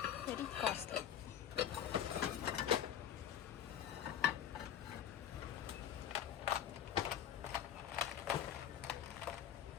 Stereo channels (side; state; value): right; quieter; 10.0 dB